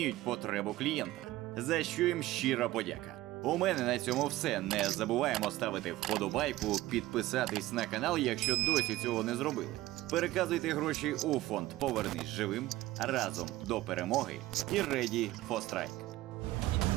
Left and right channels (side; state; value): left; quieter; 16.7 dB